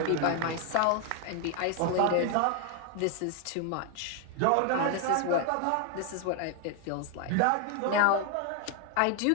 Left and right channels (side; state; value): both; different; correlation 0.00